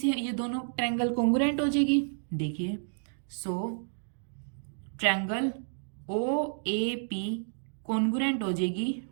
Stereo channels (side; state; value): left; silent; digital silence